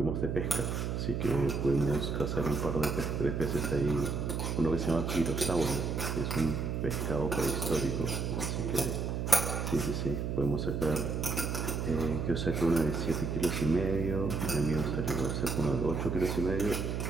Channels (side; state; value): right; noise; hum, 1 dB below the sound